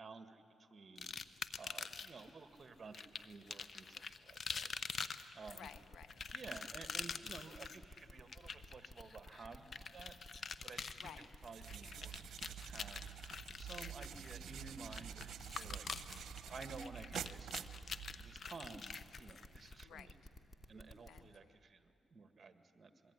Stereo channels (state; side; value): normal; both; correlation 0.76